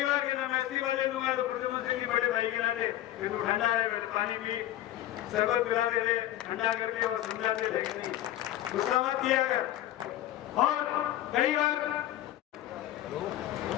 बार कहता मैं इस्तीफा दे दूंगा, तो प्रधानमंत्री जी बड़े भाई के नाते फिर तो ठंडा है, पानी पी, शरबत पिलाते थे, ठंडा करके और समझाते थे कि नहीं गुस्सा मत किया कर। और कई बार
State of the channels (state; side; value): quieter; right; 13.5 dB